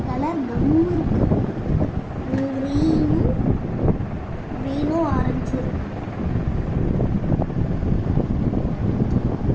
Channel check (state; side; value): identical; both; correlation 1.00